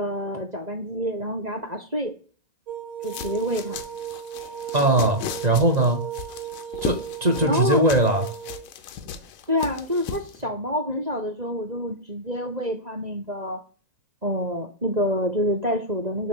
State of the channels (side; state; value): left; late; 1.9 ms